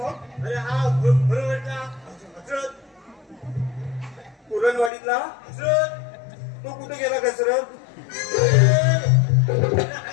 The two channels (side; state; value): right; drops out; at 4.9 s